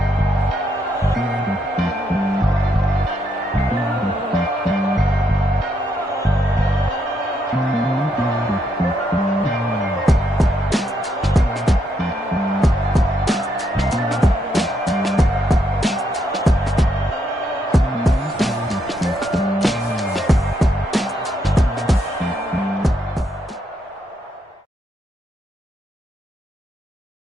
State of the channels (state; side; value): normal; both; correlation 0.77